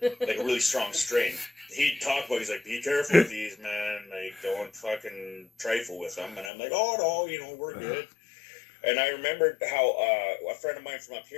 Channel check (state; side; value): drops out; right; at 6.5 s